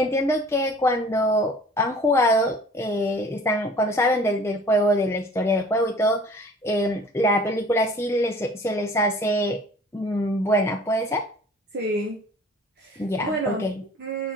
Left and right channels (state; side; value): normal; both; correlation 0.48